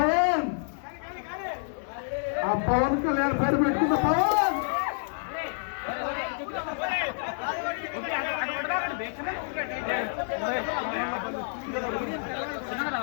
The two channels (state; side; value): silent; right; 56 dB below the other